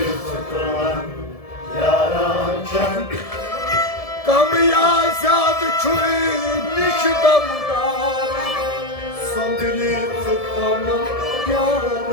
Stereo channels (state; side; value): late; right; 1.7 ms